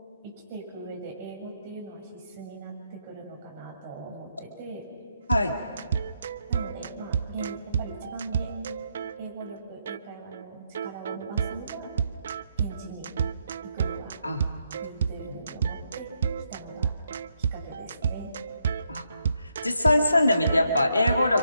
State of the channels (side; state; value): both; inverted; correlation -0.77